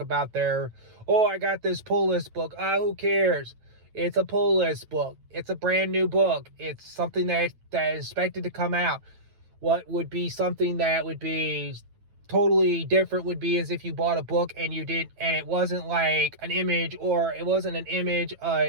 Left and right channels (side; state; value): left; late; 9.1 ms